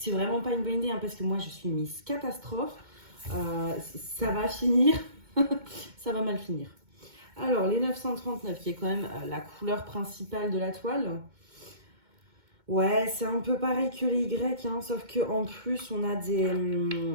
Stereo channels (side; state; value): left; late; 2.2 ms